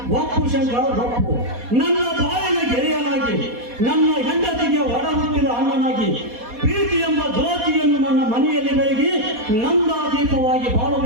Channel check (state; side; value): late; left; 4.2 ms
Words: ಒಪ್ಪು ಶಂಕರ್, ಒಪ್ಪು. ನನ್ನ ಬಾಳಿನ ಗೆಳೆಯನಾಗಿ, ನನ್ನ ಹೆಂಡತಿಗೆ ಒಡ ಹುಟ್ಟಿದ ಅಣ್ಣನಾಗಿ, ಪ್ರೀತಿ ಎಂಬ ಜ್ಯೋತಿಯನ್ನು ನನ್ನ ಮನೆಯಲ್ಲಿ ಬೆಳಗಿ ನಂದ ದೀಪವಾಗಿ